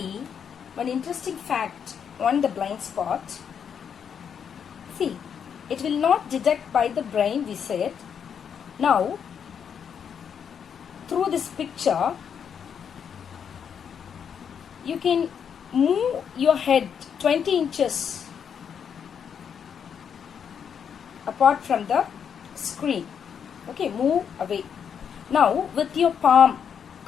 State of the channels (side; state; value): right; quieter; 7.6 dB